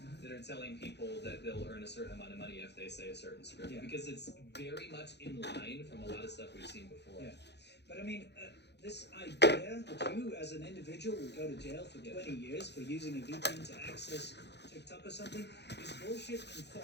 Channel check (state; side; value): late; right; 0.50 ms